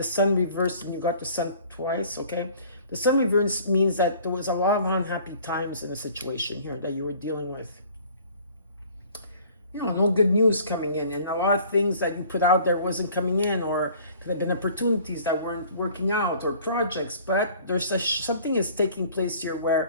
Sun reversed and you got the Sun twice, okay? The Sun reverse means that there was a lot of unhappy times in the situation here that you were dealing with. You know, no good news coming in, and a lot of things that you put out there wasn't coming in, or could have been opportunities that weren't working out, or projects. But there's something is taking place here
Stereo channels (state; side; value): inverted; both; correlation -0.52